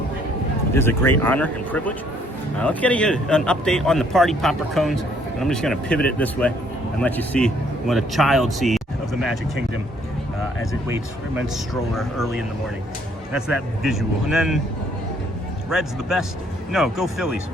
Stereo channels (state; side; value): normal; both; correlation 0.65